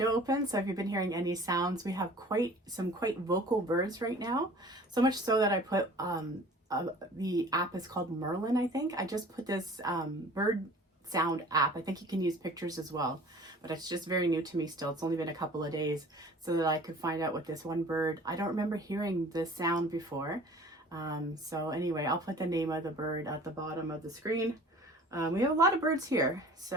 open, so if you've been hearing any sounds, we have some quite vocal birds right now. So much so that I put, the app is called Merlin, I think. I just put this bird sound app. I think you can use pictures as well, but it's just very new to me still. It's only been a couple of days, so that I could find out what this one bird, I don't remember hearing this sound before. So anyway, I'll put the name of the bird at the bottom of the screen. We have a lot of birds here,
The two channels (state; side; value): normal; both; correlation 0.46